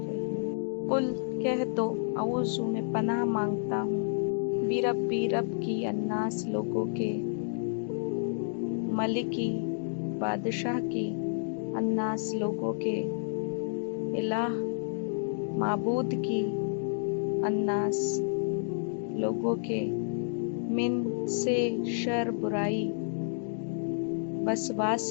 रहीम। कुल कह दो, औज़ु में पनाह मांगता हूँ, बिरब्बी रब की, अन्नास लोगों के, मलिकी बादशाह की, अन्नास लोगों के, इलाह माबूद की, अन्नास लोगों के, मिन से शर बुराई,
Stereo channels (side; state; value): right; silent; digital silence